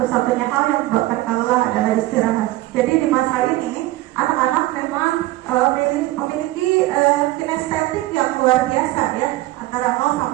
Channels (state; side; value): quieter; left; 17.5 dB